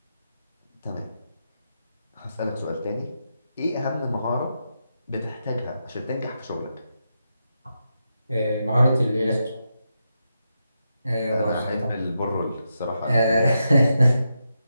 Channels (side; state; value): both; inverted; correlation -0.86